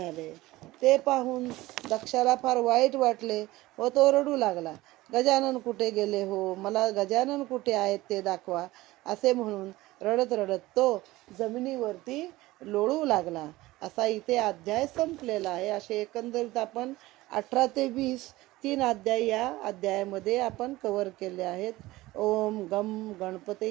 ते पाहून दक्षाला फार वाईट वाटले व तो रडू लागला. गजानन कुठे गेले हो, मला गजानन कुठे आहेत ते दाखवा, असे म्हणून रडत रडत तो जमिनीवरती लोळू लागला. असा इथे अध्याय संपलेला आहे. असे एकंदरीत आपण 18 ते 20 3 अध्याय या अध्यायामध्ये आपण कव्हर केले आहेत. ओम गम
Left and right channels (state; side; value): quieter; left; 18.5 dB